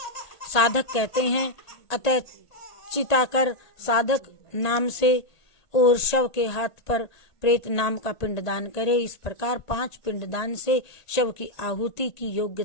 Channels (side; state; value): right; late; 1.8 ms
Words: साधक कहते हैं। अतः चिताकर साधक नाम से और शव के हाथ पर प्रेत नाम का पिंडदान करे। इस प्रकार 5 पिंडदान से शव की आहुति की